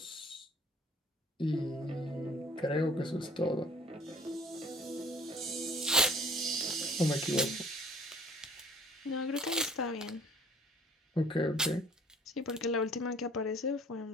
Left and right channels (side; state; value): both; normal; correlation 0.51